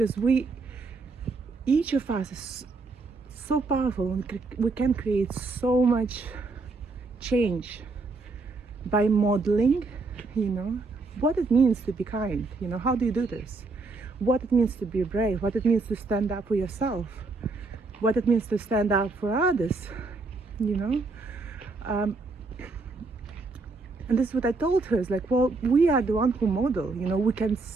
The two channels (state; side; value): quieter; left; 3.7 dB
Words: each of us is so powerful, and we can create so much change by modeling, you know, what it means to be kind, you know. How do you do this? What it means to be brave, what it means to stand up for yourself, what it means to stand up for others, you know. And this is what I told her, is like, well, we are the one who model, you know. We can